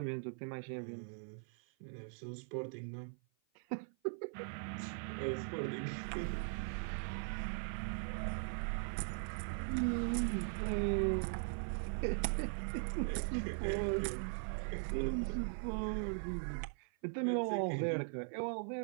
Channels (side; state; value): left; silent; 51 dB below the other